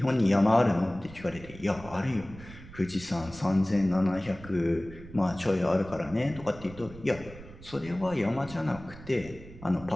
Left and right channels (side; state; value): right; noise; rumble, 17 dB below the sound